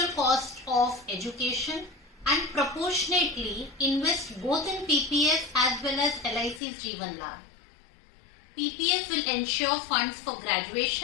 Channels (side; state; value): right; drops out; at 6.6 s